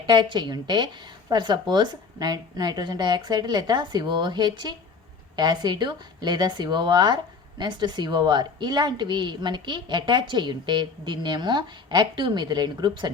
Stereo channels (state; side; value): quieter; right; 4.8 dB